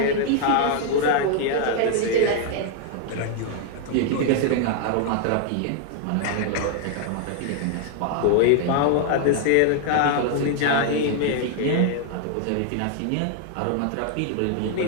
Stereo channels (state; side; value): different; both; correlation 0.00